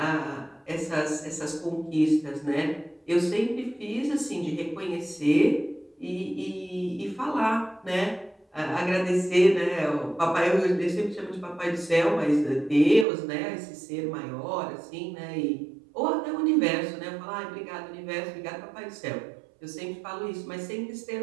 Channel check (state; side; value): drops out; left; at 13.1 s